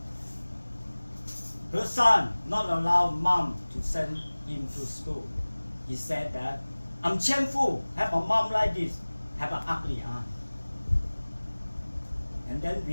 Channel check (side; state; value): both; inverted; correlation -1.00